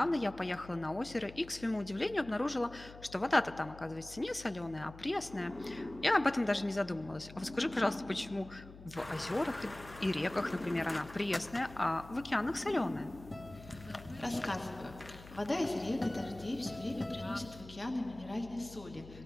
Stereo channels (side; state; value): left; noise; hum, 17 dB below the sound